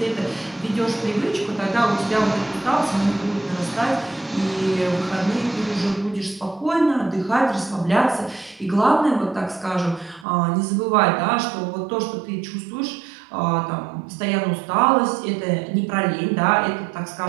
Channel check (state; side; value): drops out; left; at 10.2 s